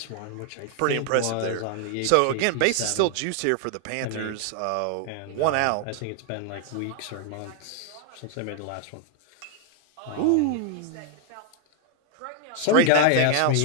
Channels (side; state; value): both; different; correlation 0.00